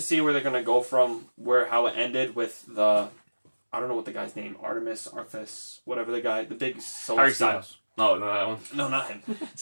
see where they're going to go from how it ended with the... I don't know what the guy's name. Arthas, whatever the guy, the big Celestial. No, not that one. No, not him.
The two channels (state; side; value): inverted; both; correlation -1.00